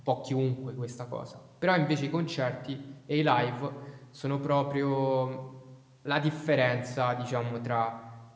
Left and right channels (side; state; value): both; identical; correlation 1.00